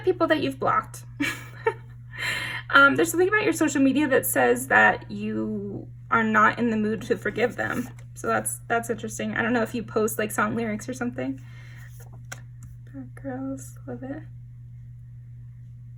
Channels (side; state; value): both; identical; correlation 1.00